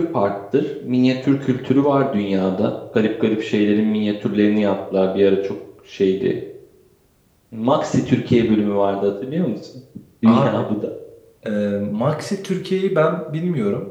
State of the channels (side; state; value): both; identical; correlation 1.00